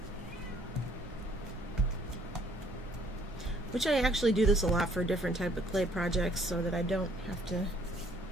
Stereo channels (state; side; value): normal; both; correlation 0.62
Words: Which I actually do this a lot for different type of clay projects so that I don't have to